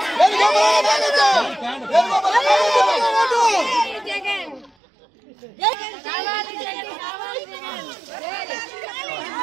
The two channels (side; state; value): left; drops out; at 4.7 s